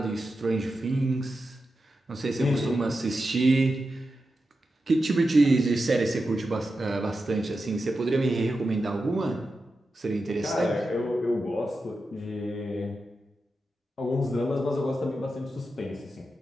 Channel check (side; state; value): both; normal; correlation 0.90